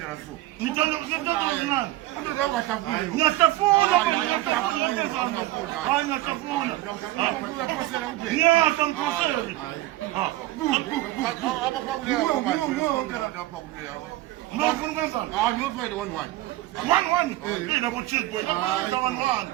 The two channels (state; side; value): quieter; left; 16.6 dB